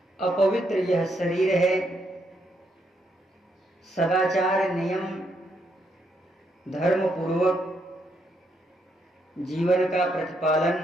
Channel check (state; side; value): normal; both; correlation 0.77